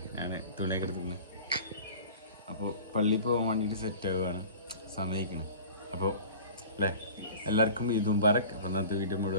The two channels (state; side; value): inverted; both; correlation -0.41